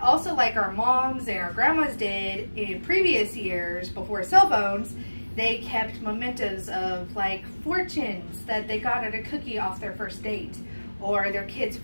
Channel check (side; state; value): both; inverted; correlation -1.00